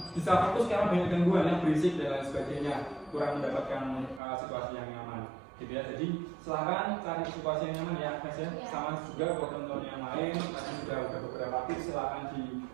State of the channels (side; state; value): left; drops out; at 4.2 s